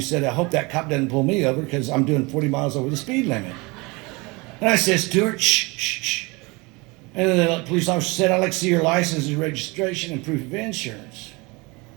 said, I hope that cop doesn't pull me over because I'm doing 40 miles over the speed limit. And I said, Stuart, shh, shh, shh. And then the police officer said, I'd like to see your license and registration and proof of insurance.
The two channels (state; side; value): quieter; left; 26.1 dB